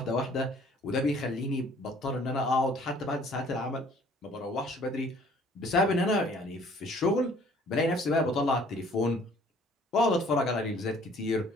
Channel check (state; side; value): normal; both; correlation 0.56